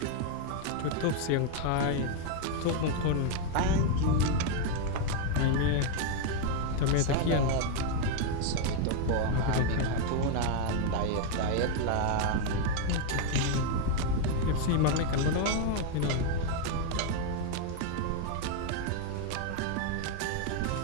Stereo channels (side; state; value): both; different; correlation 0.01